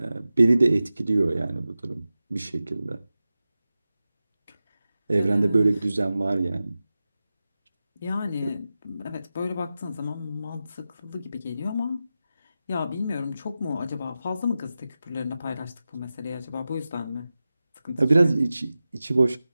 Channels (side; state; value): both; inverted; correlation -0.94